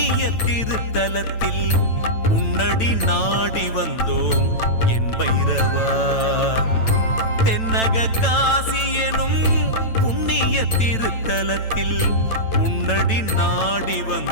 திருத்தலத்தில் உன்னடி நாடி வந்தோம் என் பைரவா. தென்னக காசி எனும் புண்ணிய திருத்தலத்தில் உன்னடி நாடி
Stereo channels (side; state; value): right; late; 9.0 ms